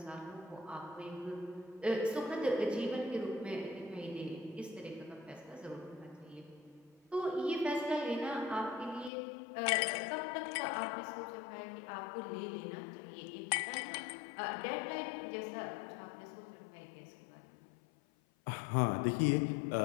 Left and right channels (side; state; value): right; drops out; at 9.1 s